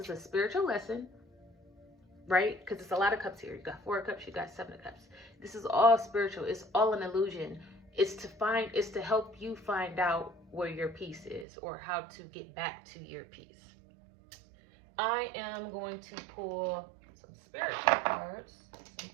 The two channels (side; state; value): left; drops out; at 11.5 s